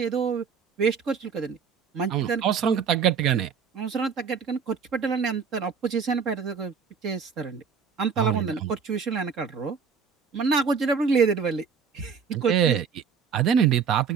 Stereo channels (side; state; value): left; quieter; 6.3 dB